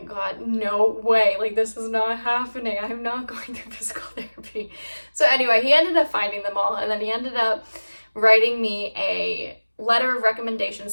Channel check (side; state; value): both; inverted; correlation -1.00